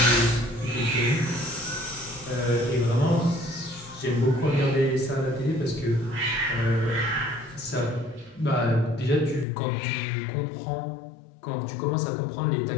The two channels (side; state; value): right; drops out; at 9.5 s